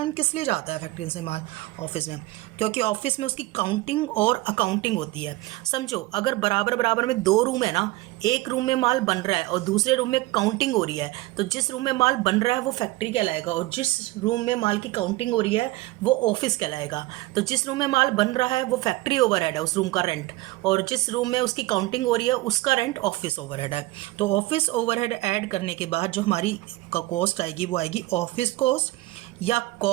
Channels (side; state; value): left; quieter; 19.1 dB